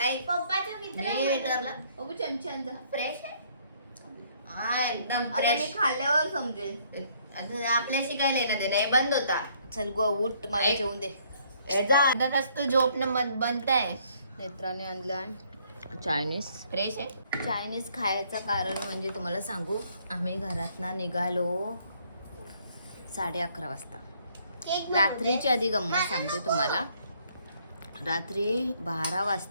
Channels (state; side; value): inverted; both; correlation -0.65